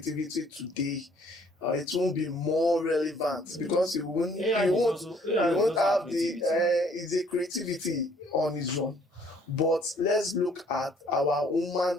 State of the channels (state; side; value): normal; both; correlation 0.61